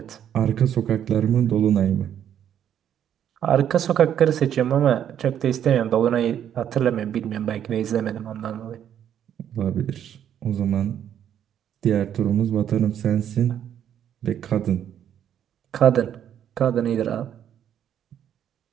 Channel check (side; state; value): left; quieter; 9.7 dB